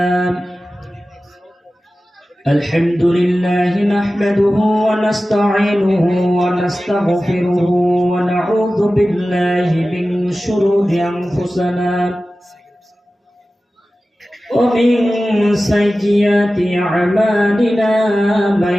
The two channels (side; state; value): both; normal; correlation 0.95